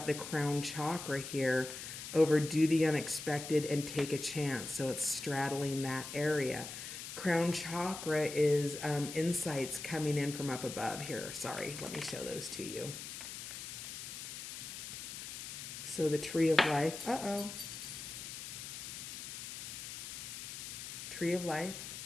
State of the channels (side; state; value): left; noise; hiss, 8 dB below the sound